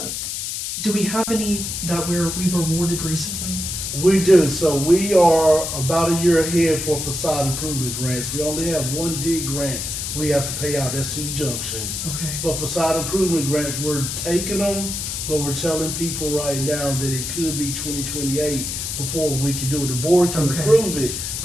do we have any that we've awarded recently? We do. So we are about a year ahead for facade improvement grants. We only have one D grant we have to pay out. That's to the junction. Okay. But facade improvement grants, we're taking them, but we're telling people right now that it could be 2028 before we can do it. The board can Okay. approve it,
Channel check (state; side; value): noise; left; hiss, 4 dB below the sound